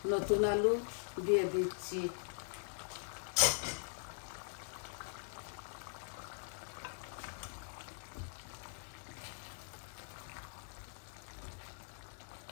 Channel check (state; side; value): silent; right; digital silence